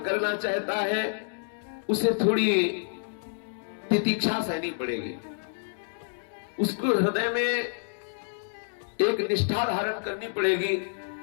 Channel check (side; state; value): right; silent; digital silence